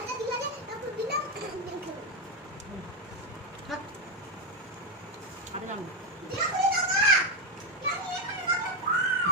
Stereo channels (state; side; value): normal; both; correlation 0.08